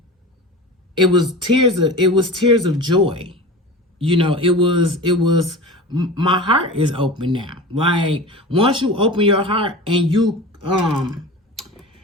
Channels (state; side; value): normal; both; correlation 0.32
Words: tears of joy. You know, it was my heart is open now. Like once you open your heart and you